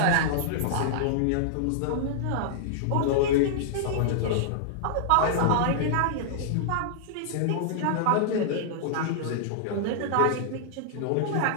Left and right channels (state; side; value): different; both; correlation -0.01